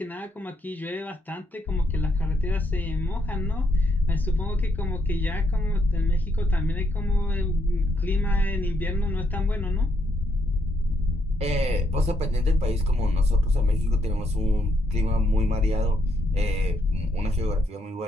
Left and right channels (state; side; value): normal; both; correlation 0.76